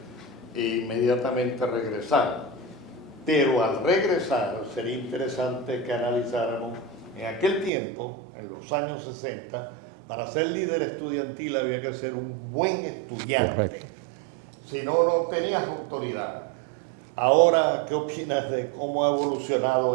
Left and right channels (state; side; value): drops out; left; at 7.7 s